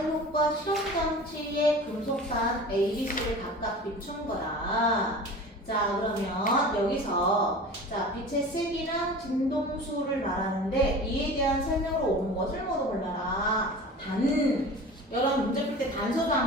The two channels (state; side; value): normal; both; correlation 0.37